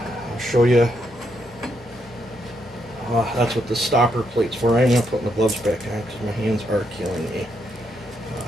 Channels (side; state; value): both; normal; correlation 0.78